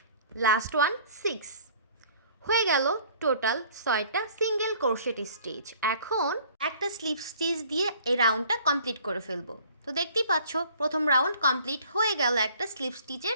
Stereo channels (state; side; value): inverted; both; correlation -0.53